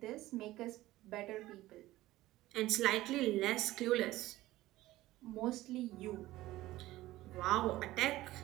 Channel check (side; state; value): left; quieter; 16.7 dB